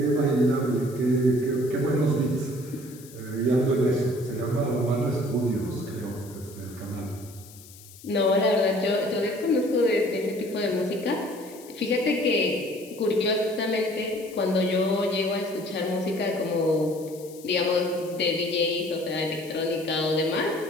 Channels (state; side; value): noise; left; hiss, 20 dB below the sound